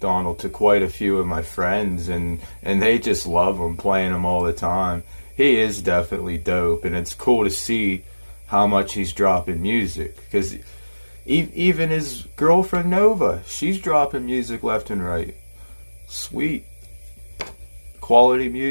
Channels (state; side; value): inverted; both; correlation -1.00